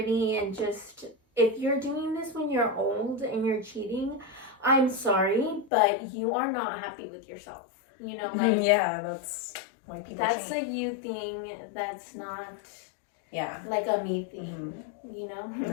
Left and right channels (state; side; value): drops out; right; at 5.7 s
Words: and just. If you're doing this when you're old and you're cheating, I'm sorry, but you are not happy with yourself. You know, like yeah, that's why people. That's a you thing. That's not. Yeah. Like a me thing. You know.